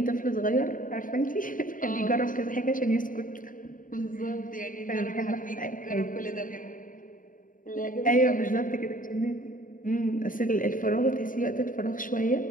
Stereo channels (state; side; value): late; right; 0.39 ms